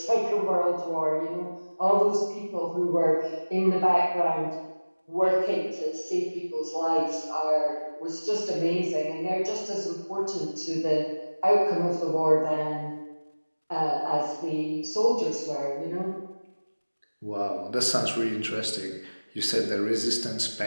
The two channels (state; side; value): inverted; both; correlation -1.00